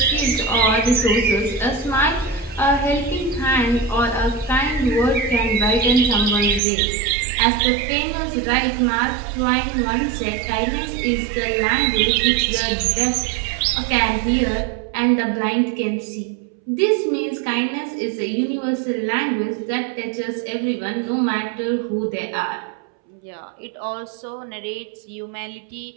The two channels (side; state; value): left; drops out; at 6.6 s